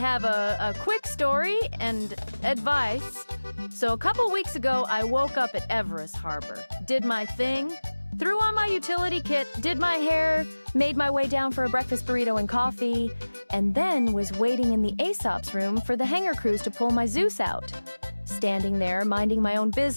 a quick story and advice. So a couple weeks ago, I woke up at Everest Harbor, did my thing, threw on my utility kit, did my hair, made my way down for a breakfast burrito and coffee, and then was waiting in the Aesop's room for the hangar crews to pull my Zeus out. Standing there, minding my own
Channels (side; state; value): both; inverted; correlation -1.00